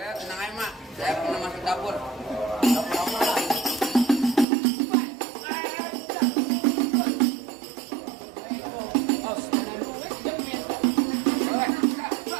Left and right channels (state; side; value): drops out; left; at 4.5 s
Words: aja, Mak. Saya pernah masuk dapur.